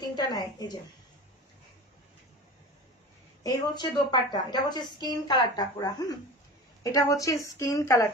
নেয়। এই যে এই হচ্ছে দোপাট্টা, এটা হচ্ছে স্কিন কালারটা পুরা। এটা হচ্ছে স্কিন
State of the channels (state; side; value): normal; both; correlation 0.33